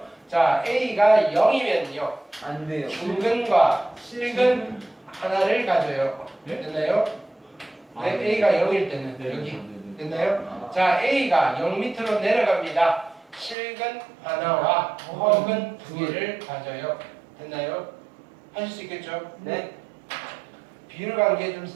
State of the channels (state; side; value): drops out; left; at 13.6 s